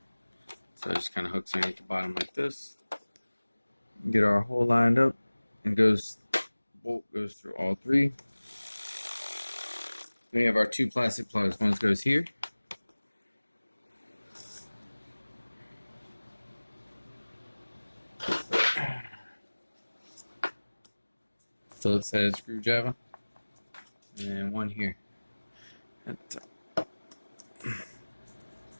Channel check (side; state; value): both; inverted; correlation -1.00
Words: So it just kind of hooks underneath the bottom like this. Get our hole lined up, and bolt goes through all three. Then we have our two plastic plugs. One goes here. Phillips head screwdriver. And one here.